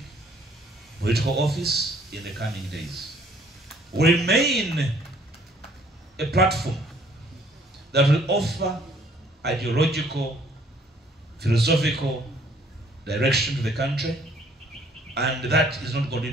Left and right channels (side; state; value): both; normal; correlation 0.60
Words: political office in the coming days. Will remain a platform that will offer ideological, philosophical direction to the country, and that is not going to